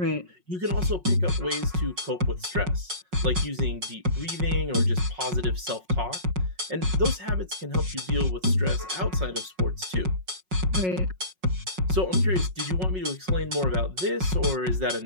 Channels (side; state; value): left; late; 5.4 ms